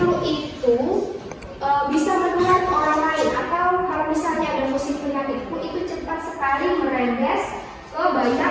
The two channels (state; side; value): identical; both; correlation 1.00